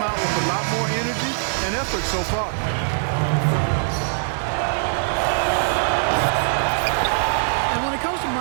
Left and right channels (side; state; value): left; silent; digital silence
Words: out with a lot more energy and effort so far. And when it comes to